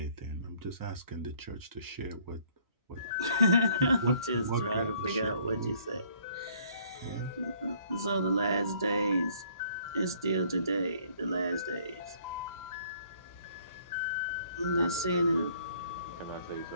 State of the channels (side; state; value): both; inverted; correlation -0.61